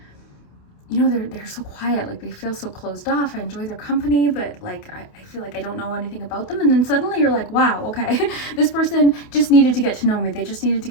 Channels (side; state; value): right; late; 28 ms